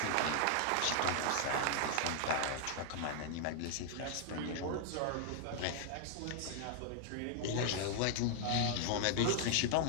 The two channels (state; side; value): different; both; correlation 0.00